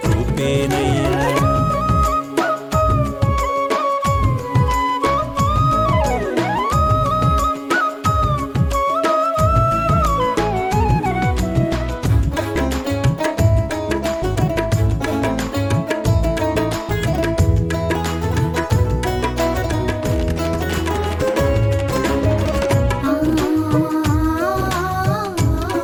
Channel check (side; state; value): both; identical; correlation 1.00